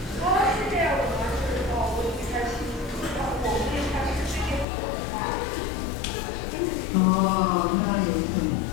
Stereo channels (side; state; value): right; drops out; at 4.7 s